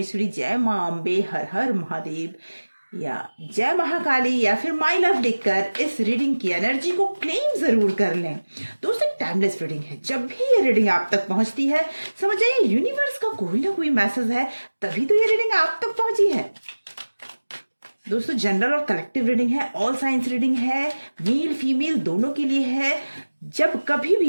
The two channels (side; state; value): both; inverted; correlation -1.00